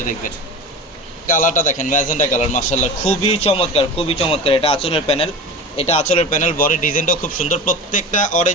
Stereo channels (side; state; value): both; normal; correlation 0.32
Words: দেখবেন। কালারটা দেখেন, ম্যাজেন্টা কালার, মাশাআল্লাহ খুবই চমৎকার, খুবই চমৎকার। এটা আঁচলের প্যানেল, বডি ডিজাইনটাও খুব সুন্দর। প্রত্যেকটা